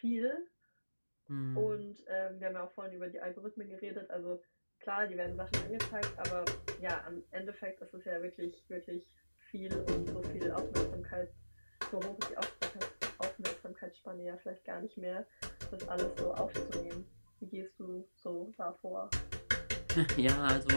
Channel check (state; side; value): inverted; both; correlation -1.00